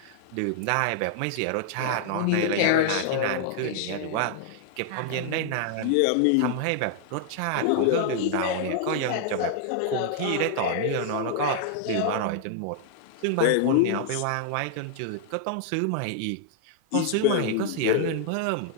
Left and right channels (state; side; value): different; both; correlation 0.00